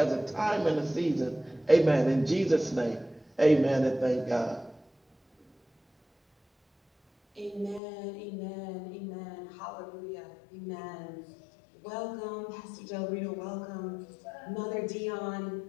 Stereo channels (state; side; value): drops out; right; at 7.8 s